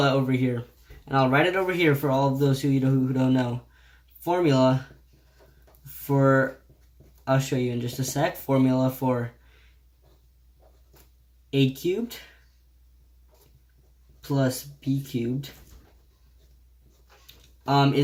over here, and I'll write it over here for all of those who don't know, formula for, I'll show you in just a sec, formula for a cubed plus b cubed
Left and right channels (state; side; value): identical; both; correlation 1.00